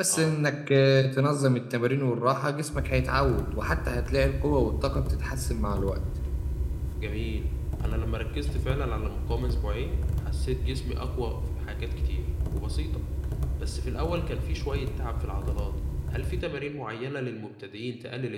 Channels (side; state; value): both; identical; correlation 1.00